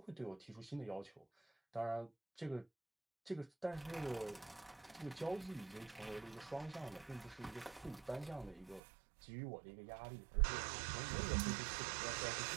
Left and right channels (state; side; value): drops out; left; at 8.8 s